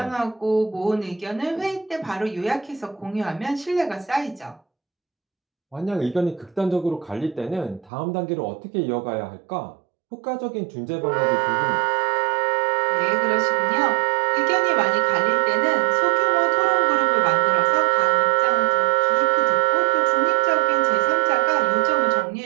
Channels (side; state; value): left; drops out; at 7.9 s